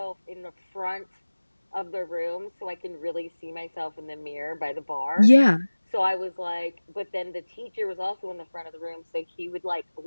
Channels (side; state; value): both; inverted; correlation -1.00